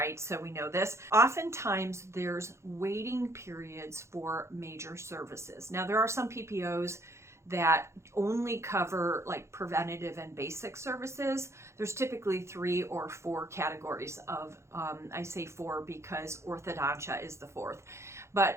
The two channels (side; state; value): left; late; 0.13 ms